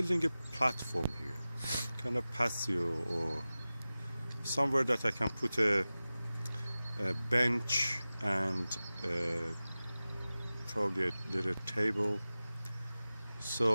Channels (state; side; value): inverted; both; correlation -0.97